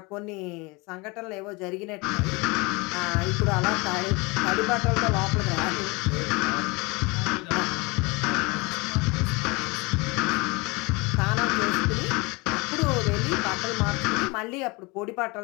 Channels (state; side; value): quieter; right; 26.1 dB